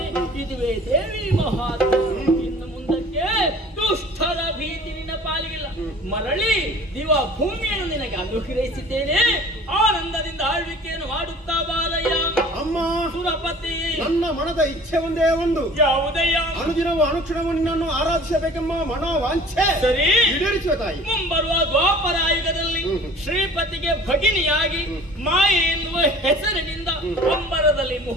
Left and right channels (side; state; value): both; normal; correlation 0.46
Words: ಇದುವೇ ದೇವಿ ಮಹಾತ್ಮೆ. ಇನ್ನು ಮುಂದಕ್ಕೆ ದುಷ್ಟರ ಭೀತಿ ನಿನ್ನ ಪಾಲಿಗಿಲ್ಲ. ಮರಳಿ ದಿವ ಭೂಮಿಯನ್ನು ನಿನಗೆ ಅನುಗ್ರಹಿಸಿದ್ದೇನೆ. ಆನಂದದಿಂದ ಆಳ್ವಿಕೆಯನ್ನು ಮಾಡುತ್ತಾ ಬಾರಯ್ಯ. ಅಮ್ಮ ಸುರಪತಿ, ನನ್ನ ಮನದ ಇಚ್ಛೆ ಒಂದೇ ಒಂದು. ಯಾವುದಯ್ಯ? ಅನುದಿನವೂ ಅನುಕ್ಷಣವೂ ನಿನ್ನನ್ನು ಆರಾಧಿಸಬೇಕೆಂಬ ಮನೋವಾಂಛೆ ಸರಿ, ಈಡೇರಿಸುವ ತಾಯಿ. ಮುಂಬರುವ ದ್ವಾಪರಾಯುಗದಲ್ಲಿ ಶ್ರೀಪತಿಗೆ ಭಗಿನಿಯಾಗಿ ಮಾಯೆ ಎನ್ನುವ ಹೆಸರಿನಿಂದ ಅಂಬರದಲ್ಲಿ